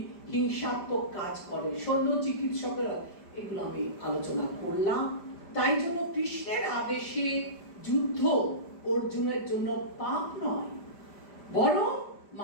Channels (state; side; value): late; right; 5.0 ms